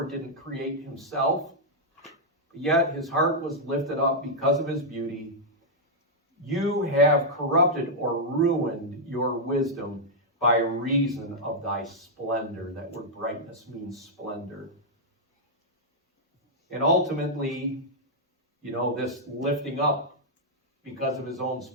didn't create himself, yet his heart was lifted up because of his beauty. You have corrupted or ruined your wisdom by reason of thy splendor. That word brightness means splendor. And ultimately, this lifting up because of his own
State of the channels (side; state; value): both; normal; correlation -0.05